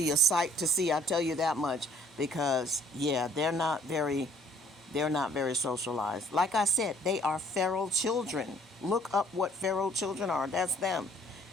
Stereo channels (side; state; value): both; normal; correlation 0.59